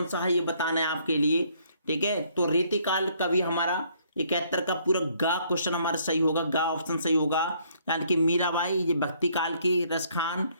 सा है ये बताना है आपके लिए। ठीक है, तो रीतिकाल कवि हमारा 71 का पूरा गा क्वेश्चन हमारा सही होगा, गा ऑप्शन सही होगा, यानी कि मीराबाई ये भक्ति काल की, रसखान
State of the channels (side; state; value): both; inverted; correlation -0.66